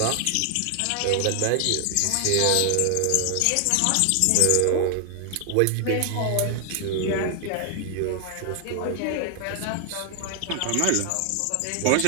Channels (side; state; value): both; different; correlation 0.00